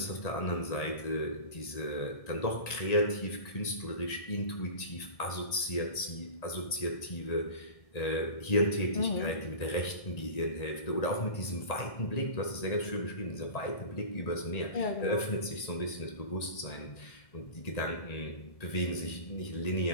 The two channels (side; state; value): right; late; 1.8 ms